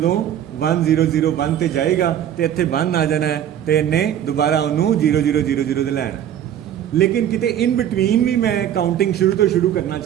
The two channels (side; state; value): left; quieter; 10.4 dB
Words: 1 0 0 1 ਤੇ ਜਾਏਗਾ ਤੇ ਇੱਥੇ 1 ਆ ਜਾਣਾ ਹੈ ਤੇ ਇਹਨੇ ਦੁਬਾਰਾ ਉਹਨੂੰ 0 0 0 0 ਤੇ ਲੈਣਾ। ਲੇਕਿਨ ਕਿਤੇ ਇਨ ਬਿਟਵੀਨ ਵੀ ਮੈਂ ਕਾਊਂਟਿੰਗ ਸ਼ੁਰੂ ਤੋਂ ਸ਼ੁਰੂ ਕਰਨਾ